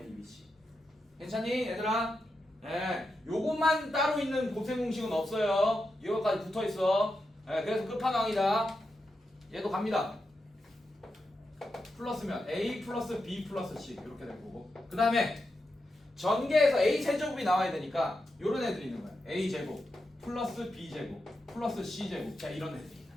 괜찮니, 얘들아? 네, 요것만 따로 있는 곱셈 공식은 없어요. 이거까지 붙어 있어. 네, 그래서 끝판왕이다. 얘도 갑니다. 플러스면 a 플러스 b 플러스 c 이렇게 될 거고. 그 다음에 전개에서 a 세제곱이 나와야 되니까 요런 애들이 있는 거야. a 제곱 플러스 b 제곱 플러스 c 제곱. 자, 이런 애들이 있는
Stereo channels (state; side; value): normal; both; correlation 0.87